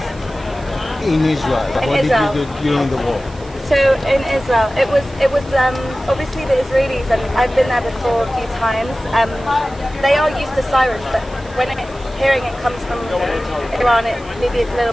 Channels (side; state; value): right; noise; hiss, 23 dB below the sound